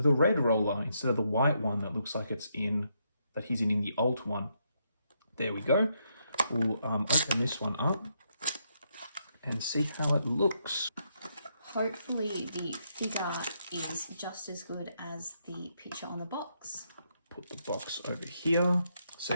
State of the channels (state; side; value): inverted; both; correlation -0.78